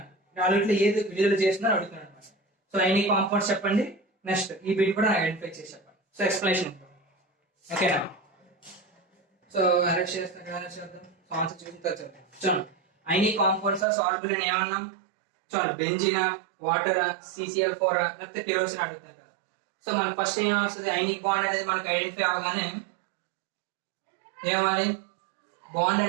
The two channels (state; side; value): drops out; left; at 13.9 s